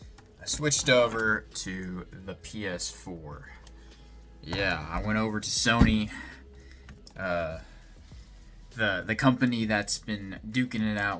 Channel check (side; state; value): both; identical; correlation 1.00